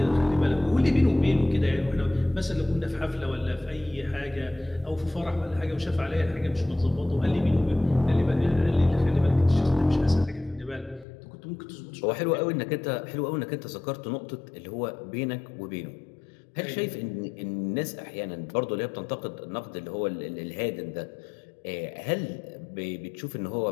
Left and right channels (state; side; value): drops out; right; at 11.1 s